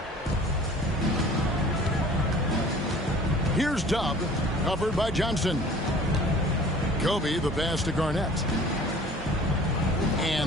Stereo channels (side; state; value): both; normal; correlation 0.47